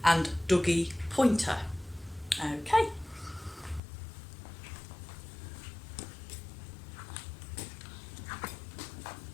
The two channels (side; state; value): right; drops out; at 3.8 s